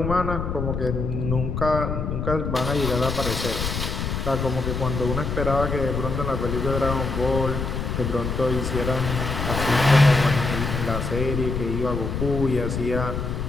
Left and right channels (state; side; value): noise; left; rumble, 3 dB below the sound